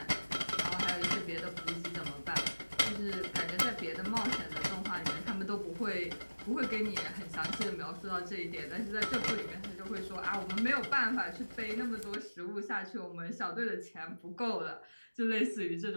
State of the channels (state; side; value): inverted; both; correlation -1.00